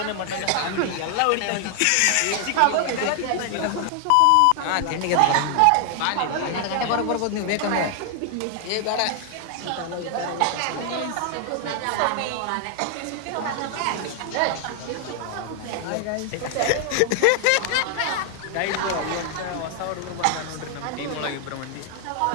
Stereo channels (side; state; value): both; different; correlation 0.00